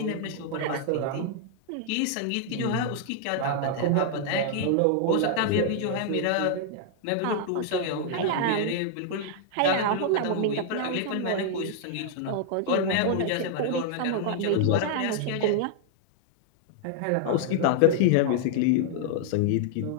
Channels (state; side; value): different; both; correlation -0.01